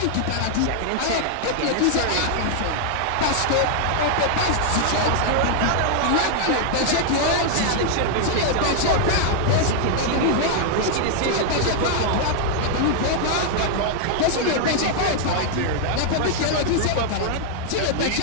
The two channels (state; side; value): different; both; correlation -0.01